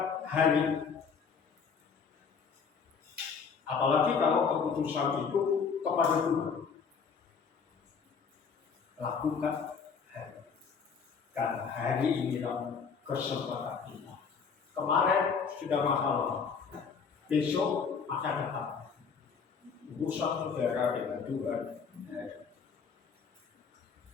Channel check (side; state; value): right; quieter; 5.9 dB